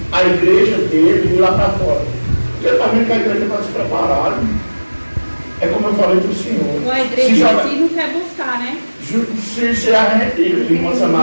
a igreja dele ir lá para fora? Porque ele está vendo que a igreja está despreparada. É como eu falei para o senhor. A igreja em si não quer buscar, né? Se a gente, irmã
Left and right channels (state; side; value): inverted; both; correlation -1.00